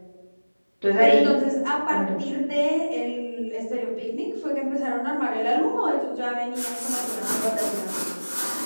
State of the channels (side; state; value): both; inverted; correlation -1.00